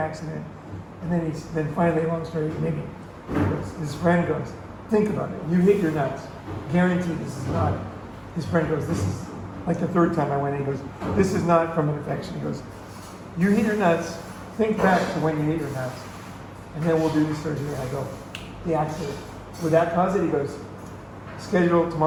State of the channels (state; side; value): identical; both; correlation 1.00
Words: And then finally, long story, maybe his friend goes, think about it. You hit your nuts. Guaranteed this is not. His friend goes, this is like the 3rd time I went in. He goes, this is not from an infection. He goes, you hit your nuts. Think back to when you hit your nuts. And then we'll do the surgery. And I go, the accident. Would that cause it? He goes, scheduled